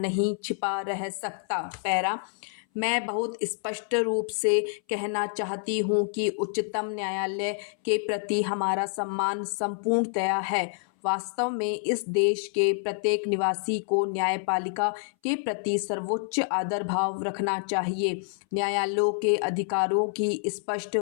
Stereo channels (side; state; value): right; silent; 60 dB below the other